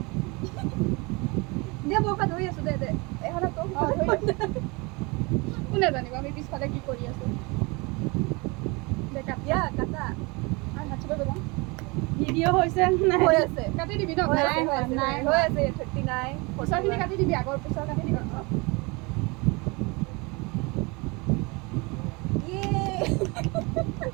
দে মই ধৰি আছোঁ দে দে এখনত তোক কোনে জানিব আমি পিছফালে কি কৰি আছো দে ইয়া কাটা আৰু হাত চুব যাম ভিডিঅ' হৈছে নাই হৈ আছে কাটি দিবি ন নাই হৈ আছে 39 পিছৰখিনি কাটি দিবি আগৰ পিছৰ কাটি দিবি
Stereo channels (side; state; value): left; quieter; 27.2 dB